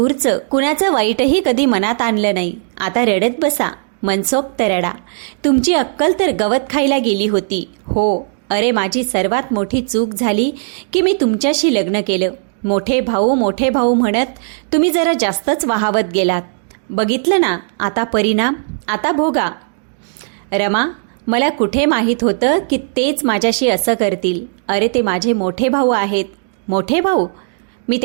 कुणाचं वाईटही कधी मनात आणलं नाही. आता रडत बसा, मनसोक्त रडा. तुमची अक्कल तर गवत खायला गेली होती. हो, अरे माझी सर्वात मोठी चूक झाली की मी तुमच्याशी लग्न केलं. मोठे भाऊ म्हणत तुम्ही जरा जास्तच वाहावत गेलात. बघितलं ना आता परिणाम? आता भोगा. रमा, मला कुठे माहीत होतं की तेच माझ्याशी असं करतील. अरे ते माझे मोठे भाऊ आहेत. मोठे भाऊ? मी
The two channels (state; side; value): silent; left; digital silence